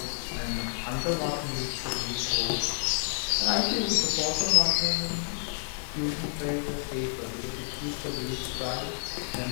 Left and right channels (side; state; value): right; silent; 58 dB below the other